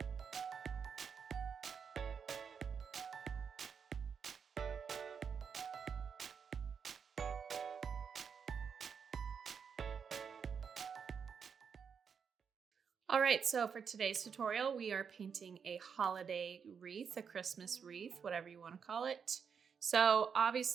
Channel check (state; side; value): quieter; left; 6.7 dB